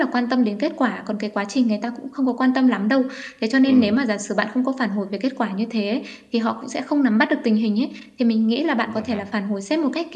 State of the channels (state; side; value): identical; both; correlation 1.00